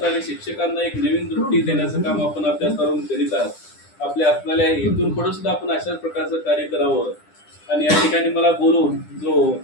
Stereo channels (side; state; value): right; late; 9.9 ms